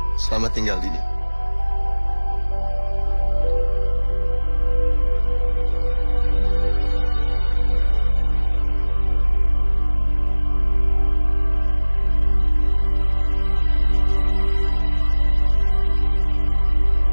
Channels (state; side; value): inverted; both; correlation -1.00